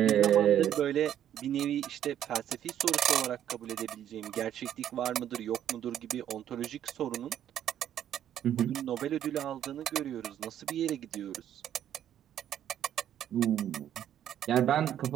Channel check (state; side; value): quieter; left; 10.6 dB